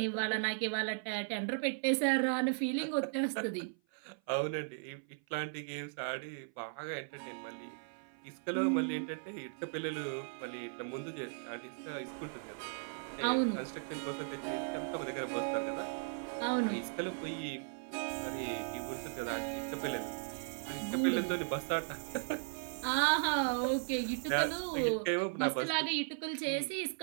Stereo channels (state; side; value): silent; left; 53 dB below the other